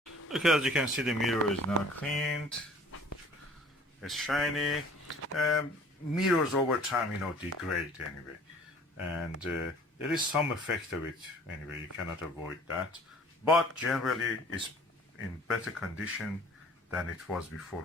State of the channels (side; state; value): both; normal; correlation 0.50